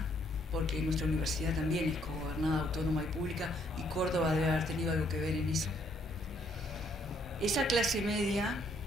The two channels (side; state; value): both; normal; correlation 0.68